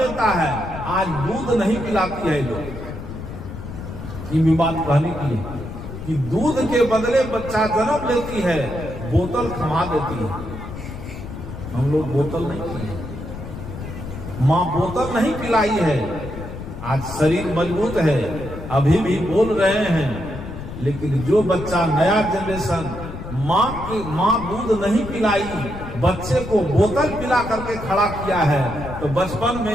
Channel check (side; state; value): left; noise; rumble, 10 dB below the sound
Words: है, आज दूध नहीं पिलाती है लोग, ये बात कहने की है कि दूध के बदले बच्चा जन्म लेती है, बोतल थमा देती है। हम लोग बोतल नहीं पिए, माँ बोतल नहीं पिलाई है। आज शरीर मजबूत है, अभी भी बोल रहे हैं, लेकिन जो बच्चा नया जनरेशन माँ दूध नहीं पिलाई, बच्चे को बोतल पिला करके खड़ा किया है, तो बचपन में